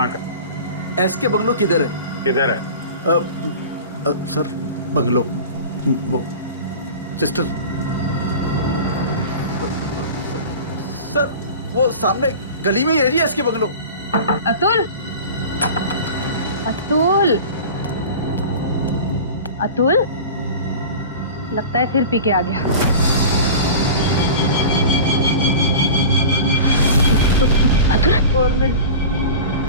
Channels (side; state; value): both; inverted; correlation -0.35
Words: का? एस के बंगलो किधर है? किधर है? सर बंगलो वो सिस्टर सर वो सामने गली में ही है जी एस के बंगलो। अतुल, अतुल, अतुल, लगता है फिर पी के आ गया। अतुल, और नहीं,